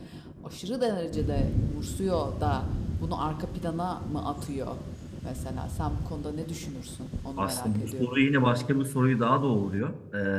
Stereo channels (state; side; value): identical; both; correlation 1.00